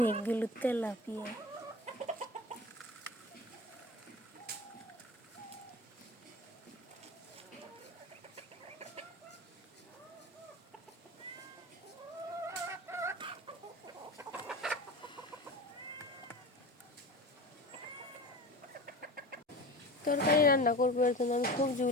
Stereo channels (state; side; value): normal; both; correlation 0.33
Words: তেলাপিয়া। তরকারি রান্না করবো, এর জন্য আমি